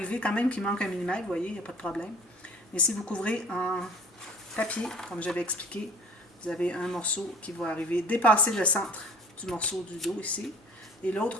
quand même qu'il manque 1 mm, vous voyez, il n'y a pas de problème. Mais si vous couvrez en papier, comme j'avais expliqué, vous avez un morceau qui va arriver, dépasser le centre du morceau du dos ici. Et l'autre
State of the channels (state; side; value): normal; both; correlation 0.47